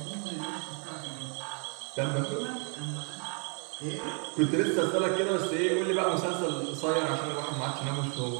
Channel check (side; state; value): left; quieter; 38.2 dB